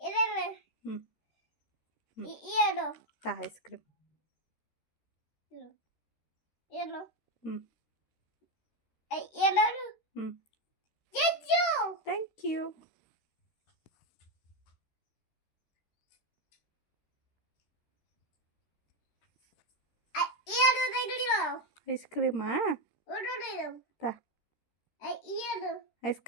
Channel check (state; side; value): late; right; 13 ms